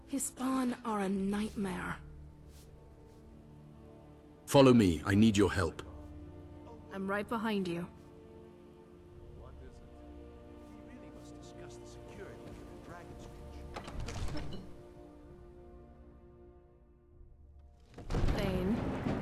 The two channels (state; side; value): identical; both; correlation 1.00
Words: his spawn are a nightmare. Follow me. I need your help. I'm right behind you. What is it? We really must discuss the security of the Dragon's Reach. Thane.